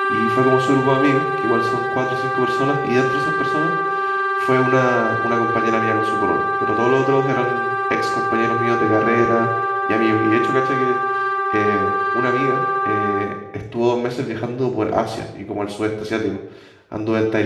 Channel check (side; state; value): both; identical; correlation 1.00